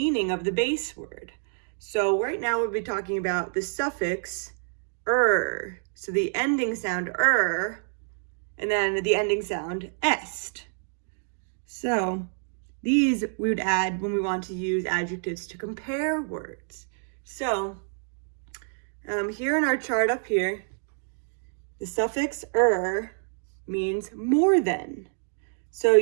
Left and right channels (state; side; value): silent; left; 58 dB below the other